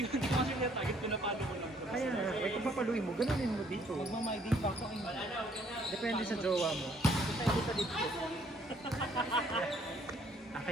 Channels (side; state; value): both; normal; correlation 0.64